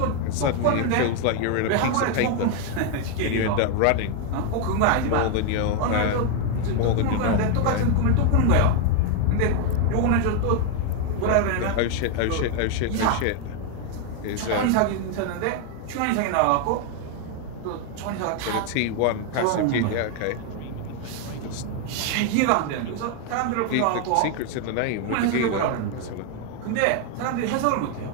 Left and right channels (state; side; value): different; both; correlation 0.01